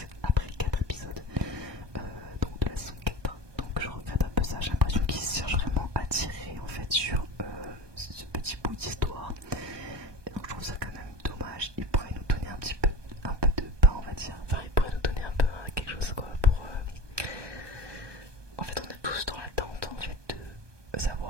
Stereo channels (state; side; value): late; left; 1.2 ms